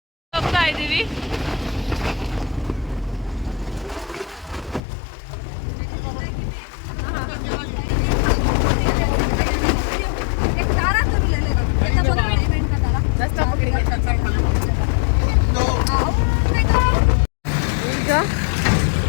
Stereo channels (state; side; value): drops out; right; at 4.8 s